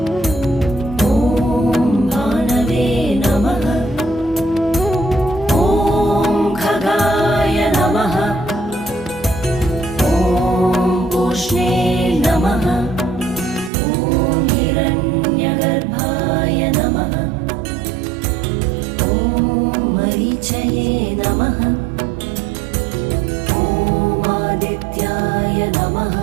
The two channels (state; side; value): drops out; left; at 13.7 s